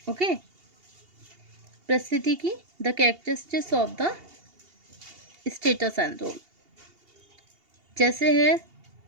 ओके, परिस्थिति की the characteristics of the status and role, जैसे है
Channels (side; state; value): left; late; 2.8 ms